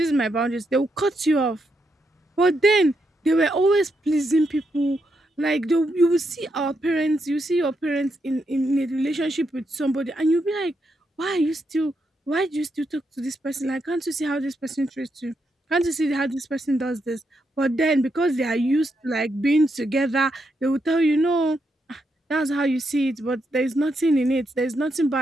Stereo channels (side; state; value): both; normal; correlation 0.81